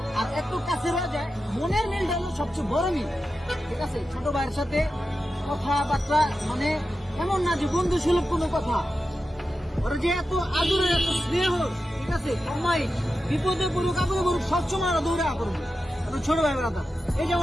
আর এত কাছে রয়ে যায়, মনের মিলটা হলো সবচেয়ে বড় মিল, ঠিক আছে। ছোট ভাইয়ের সাথে কথাবার্তা মানে এমন না যে বন্ধু সুলভ কোনো কথা, ওরা যে এত আদরের এত স্নেহ, ঠিক আছে। কমাই বিপদে পড়ুক আপদে পড়ুক সবসময় ওরা দৌড়া করবো। ছোট ভাই ব্রাদার এই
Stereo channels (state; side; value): normal; both; correlation 0.91